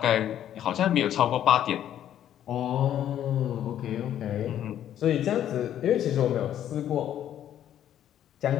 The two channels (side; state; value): right; quieter; 10.9 dB